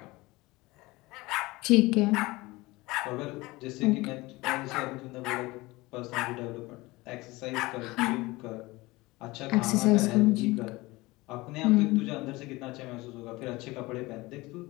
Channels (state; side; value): quieter; right; 21.4 dB